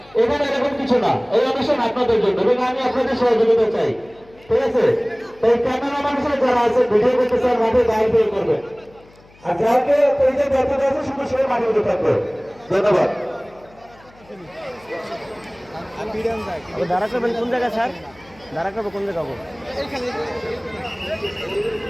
এখানে এরকম কিছু না। এই অনুষ্ঠান আপনাদের জন্য এবং আমি আপনাদের সহযোগিতা চাই, ঠিক আছে? তাই ক্যামেরা মানুষের যারা আছে ভিডিও করতেছে আর মাঠে দাঁড়িয়ে বের করবে, আর যাকে পেজের দায়িত্ব দেওয়া আছে শুধু সে মাঠে উঠে থাকবে। ধন্যবাদ। দাঁড়া করবেন কোন জায়গা স্যার? দাঁড়া করবো কোন জায়গা?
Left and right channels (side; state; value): left; noise; hum, 27 dB below the sound